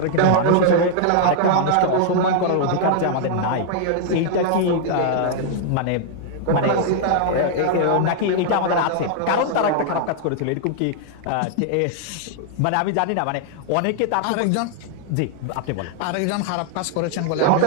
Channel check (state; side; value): different; both; correlation -0.01